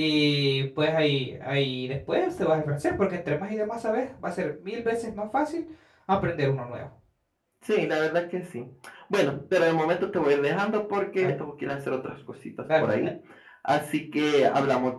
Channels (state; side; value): identical; both; correlation 1.00